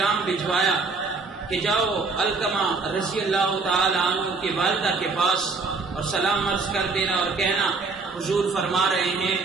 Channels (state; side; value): quieter; left; 4.1 dB